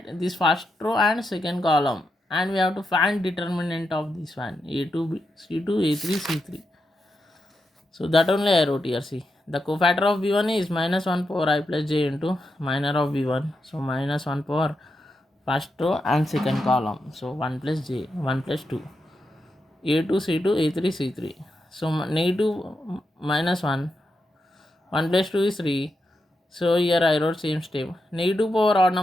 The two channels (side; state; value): both; normal; correlation 0.86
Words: this first row and second column, and we have to find determinant of this one, a2 c2 a3 c3. So that only I wrote here. See, the cofactor of b1 is minus 1 power I plus j into minor of b1. So minus 1 power first row and second column. So 1 plus j, 1 plus 2, a2 c2 a3 c3. So negative minus 1, 1 plus 2 is 3. So here I wrote same step. Negative power odd